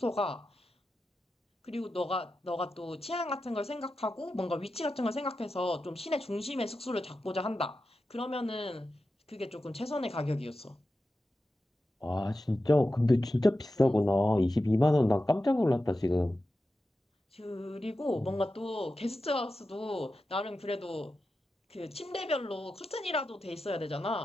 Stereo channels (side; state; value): both; normal; correlation 0.91